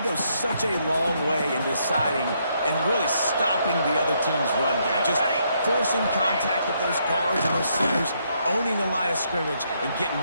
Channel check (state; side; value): inverted; both; correlation -0.74